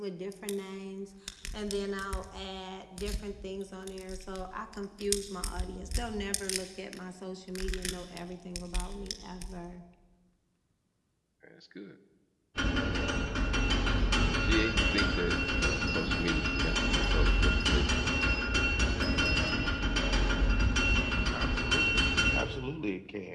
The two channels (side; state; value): both; identical; correlation 1.00